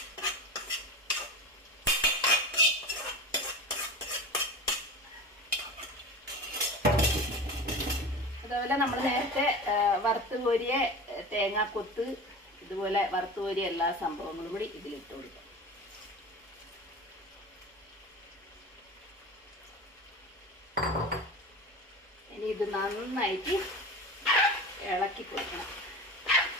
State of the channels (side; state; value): both; normal; correlation 0.30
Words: അതുപോലെ നമ്മൾ നേരത്തെ വറുത്ത് കോരിയ തേങ്ങാക്കൊത്ത്, ഇതുപോലെ വറുത്ത് കോരിയ എല്ലാ സംഭവങ്ങളും കൂടി ഇതിലിട്ട് കൊടുക്കാം. ഇനി ഇത് നന്നായിട്ട് ഇളക്കി കൊടുക്കണം.